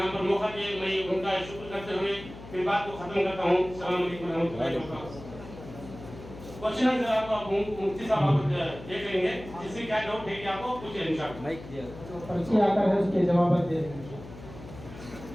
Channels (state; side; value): noise; left; hum, 15 dB below the sound